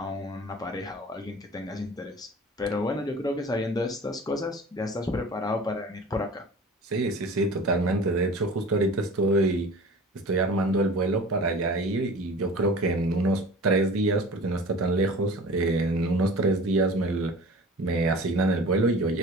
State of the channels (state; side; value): normal; both; correlation 0.40